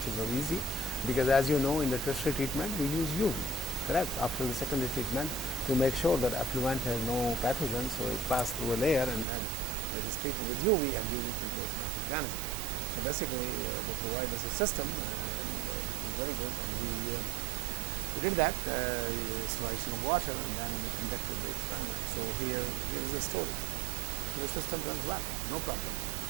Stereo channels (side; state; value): left; drops out; at 9.2 s